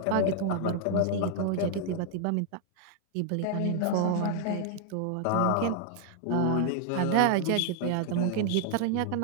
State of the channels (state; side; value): different; both; correlation 0.00